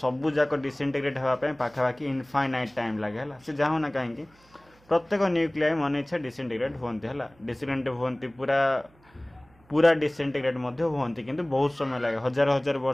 जाक डिसइंटीग्रेट होगापी पाखापाखि इनफाइनाइट टाइम लगे से जहाँ ना कहीं प्रत्येक न्यूक्लियाई मन इच्छा डिसइंटीग्रेट होती है डिसइंटीग्रेट होती पूरा पूरा डिसइंटीग्रेट होती किंतु बहुत समय लगे हजार हजार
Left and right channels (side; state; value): right; noise; hum, 30 dB below the sound